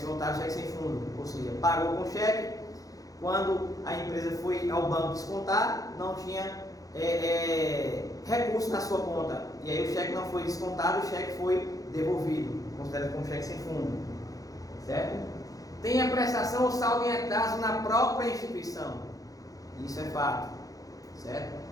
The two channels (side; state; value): right; late; 0.17 ms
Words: voluntários, cheques sem fundo, ou seja, pagou com cheque, quando a empresa foi ao banco descontar, não tinha recurso na sua conta, e aí o cheque não foi descontado, o cheque foi devolvido, considerado como cheque sem fundo, certo? Tem a prestação ou saldo em atraso na própria instituição, isso é fato, certo?